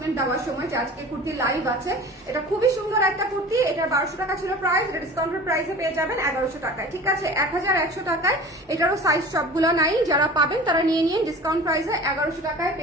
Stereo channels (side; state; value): both; normal; correlation 0.39